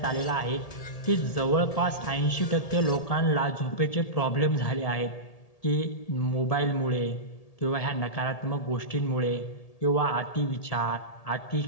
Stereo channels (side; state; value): right; late; 1.8 ms